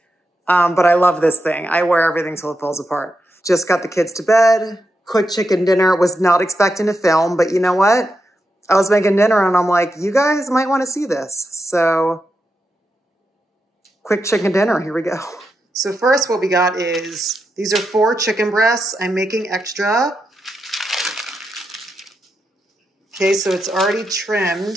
But I love this thing. I wear everything till it falls apart. Just got the kids to bed. Quick chicken dinner. Was not expecting to film, but you know what? I was making dinner and I'm like, you guys might want to see this. So quick chicken dinner. Here we go. So first what we got is, these are 4 chicken breasts. I'm making extra. Okay, so it's already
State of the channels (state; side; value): normal; both; correlation 0.86